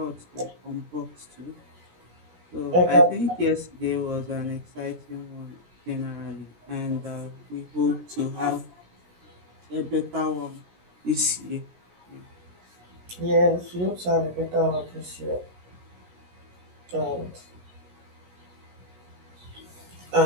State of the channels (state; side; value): late; left; 17 ms